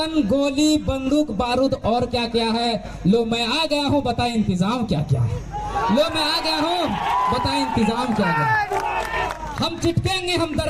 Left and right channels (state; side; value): identical; both; correlation 1.00